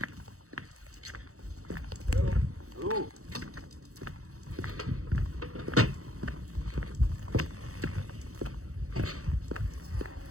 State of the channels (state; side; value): late; left; 0.65 ms